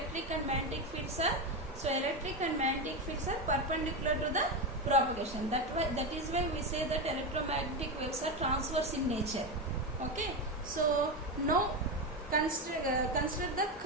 and magnetic fields are. So electric and magnetic fields are perpendicular to the propagation. That is why we say that electromagnetic waves are transverse in nature. Okay. So now consider the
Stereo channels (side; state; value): both; normal; correlation 0.14